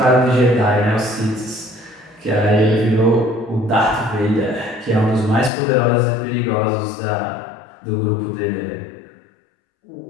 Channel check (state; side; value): drops out; right; at 5.5 s